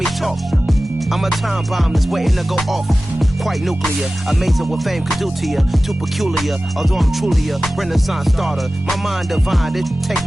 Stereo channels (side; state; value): both; normal; correlation 0.96